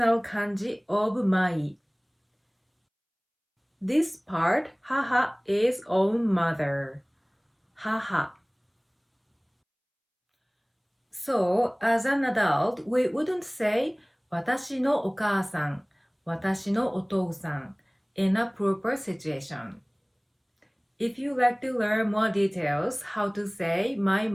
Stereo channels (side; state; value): both; identical; correlation 1.00